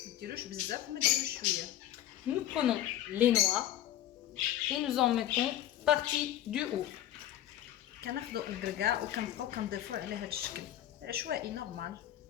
ما ديروش بزاف وما ديروش شويه. Nous prenons les noix et nous en mettons partie du haut. كناخذوا الكركاع وكنبقاو كنضيفوا على هاد الشكل عشوائي نورمال.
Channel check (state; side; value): quieter; right; 12.3 dB